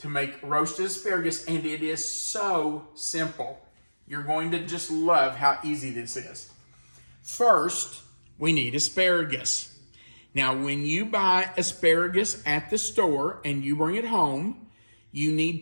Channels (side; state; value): both; inverted; correlation -1.00